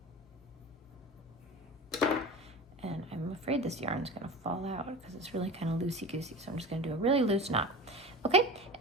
And I'm afraid this yarn's gonna fall out because it's really kind of loosey-goosey, so I'm just gonna do a really loose knot. Okay,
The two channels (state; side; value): normal; both; correlation 0.31